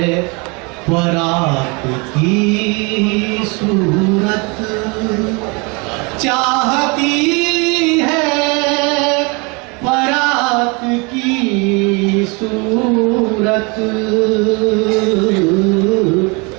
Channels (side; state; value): left; quieter; 29.7 dB